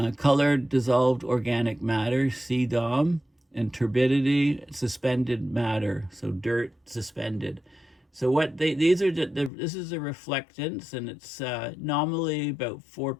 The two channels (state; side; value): drops out; right; at 9.5 s